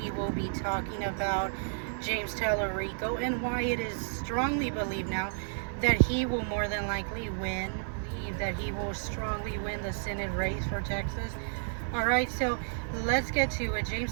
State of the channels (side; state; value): left; silent; digital silence